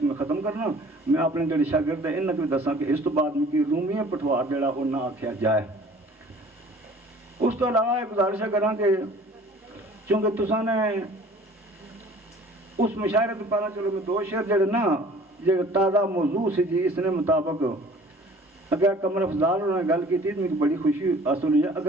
میں ختم کرنا میں اپنے جڑے شاگرد ہیں انہاں کو دساں کہ اس تو بعد میں کی رومی پٹوار جڑا وہ نہ آکھیا جائے اس تو علاوہ ایک گزارش کراں کہ چونکہ تساں نے اس مشاعرے تو پہلا چلو میں 2 شعر جڑے نا جو تازہ موضوع سے جی اس نے مطابق اگر قمر افضال انہوں نے گل کی تھی تو مجھے بڑی خوشی حاصل ہوئی ہے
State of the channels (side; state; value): both; normal; correlation 0.50